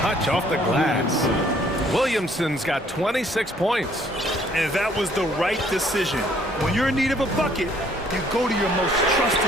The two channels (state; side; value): normal; both; correlation 0.62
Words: off the glass. Williamson's got 26 points. And that was the right decision. When you're in need of a bucket, you go to your most